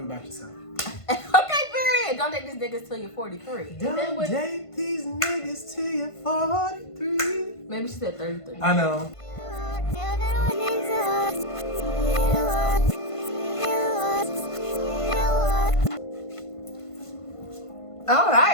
about yourself. Okay, period. Don't date these niggas till you're 43. Don't date these niggas till you're 43. Maybe she said 33. I know. All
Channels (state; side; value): late; right; 1.5 ms